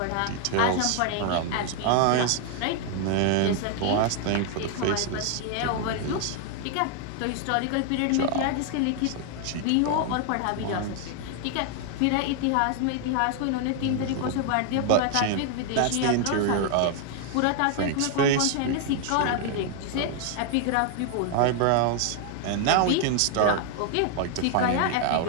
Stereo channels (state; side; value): different; both; correlation 0.00